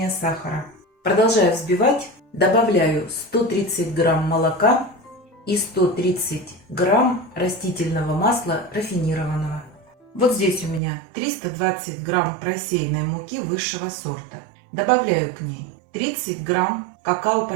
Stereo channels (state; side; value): drops out; left; at 10.8 s